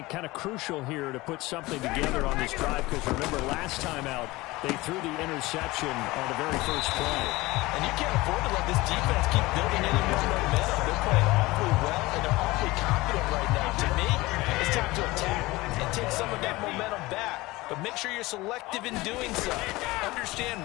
kind of crucial here to put something together on this drive, because remember last time out they threw the interception on the very first play. And you can't afford to let this defense keep building any more momentum. They're playing awfully well, and they're awfully confident right now. To me, it's time to attack and take some of that momentum back. But make sure you're selective in doing so. Understand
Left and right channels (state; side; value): quieter; right; 20.6 dB